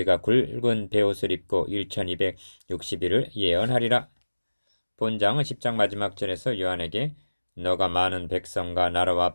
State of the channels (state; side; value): inverted; both; correlation -1.00